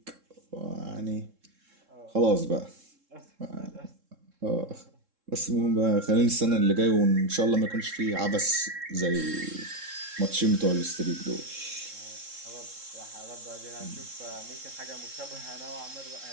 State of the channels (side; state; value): left; late; 3.7 ms